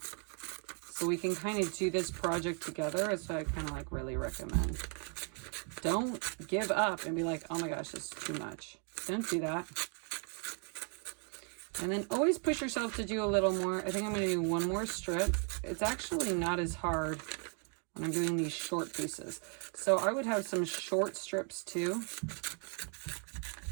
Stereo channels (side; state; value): left; quieter; 39.9 dB